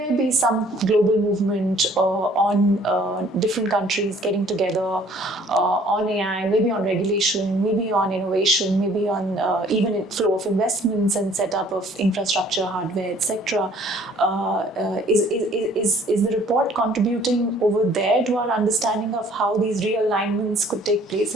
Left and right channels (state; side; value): normal; both; correlation 0.57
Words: be some global movement on different countries getting together on AI, maybe on regulation, maybe on innovation, maybe on even flow of investments and setup of infrastructure, hardware, etc. Is the report contributing over there to our understanding of how these realignments could take place